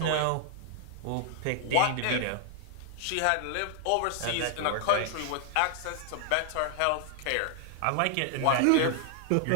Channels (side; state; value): both; different; correlation 0.00